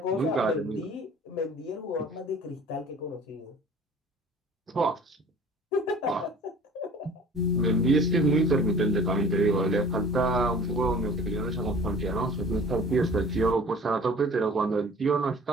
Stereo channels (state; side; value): normal; both; correlation 0.47